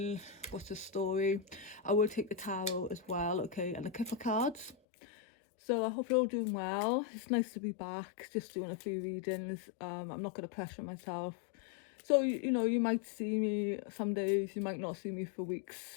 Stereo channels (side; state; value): right; drops out; at 4.8 s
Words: what's the story. I will take the tarot as well, okay, and the Kipper cards. So I hope you're all doing well. It's nice to be back, just doing a few readings. I'm not going to pressure myself. So, you might see me some days, you might not see me for